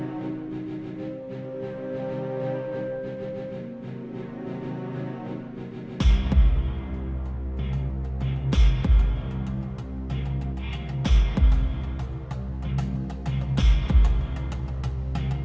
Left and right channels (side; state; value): both; identical; correlation 1.00